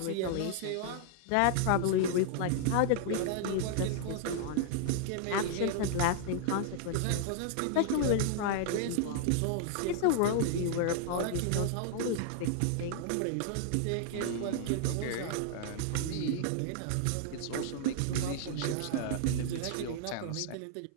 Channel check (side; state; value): both; different; correlation -0.01